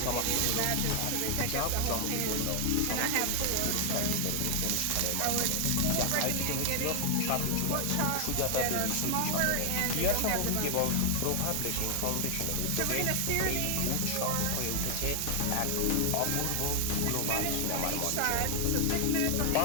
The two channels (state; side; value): different; both; correlation 0.00